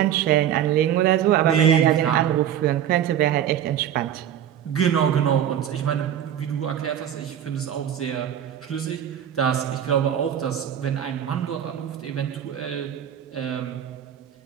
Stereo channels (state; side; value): quieter; left; 10.1 dB